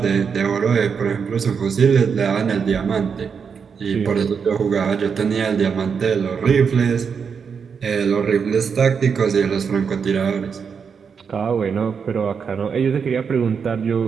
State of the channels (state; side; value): quieter; left; 6.3 dB